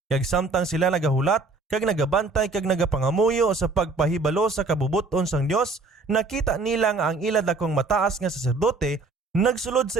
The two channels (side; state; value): left; quieter; 3.7 dB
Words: Kag samtang sila nagahulat kag nagabantay kag nagapangamuyo sa pagpahibalo sa kabubuton sang Dios, nakita nila nga ang ila dakong mataas nga saserdote nagsulod